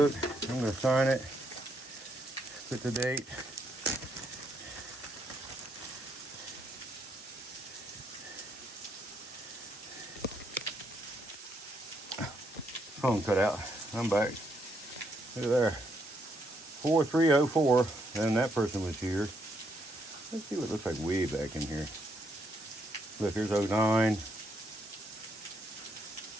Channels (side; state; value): both; normal; correlation 0.75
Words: I'm going to sign it. Put the date. Phone cut out. I'm back. Look at there. 4304. And that person was here. Let's see what it looks like way back in here. Look, here's 09.